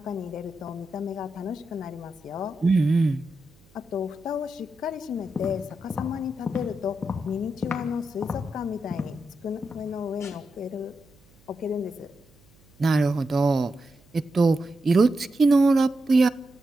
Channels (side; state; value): right; noise; hum, 30 dB below the sound